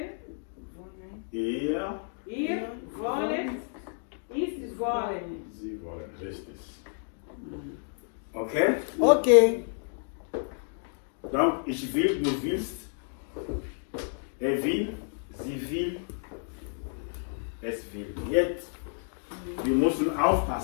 Ihr, ihr wollen, ich wollen. sie wollen. Richtig. Ok? Ok. Donc, ich will, du willst, will, sie will, es will. Jetzt, wir müssen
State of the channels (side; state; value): right; silent; 58 dB below the other